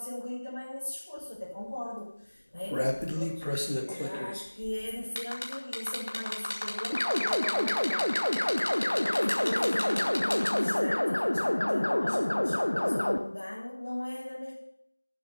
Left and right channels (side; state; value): both; inverted; correlation -1.00